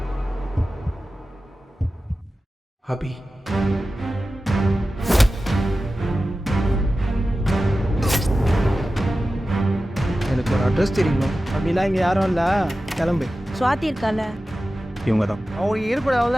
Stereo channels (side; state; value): both; normal; correlation 0.94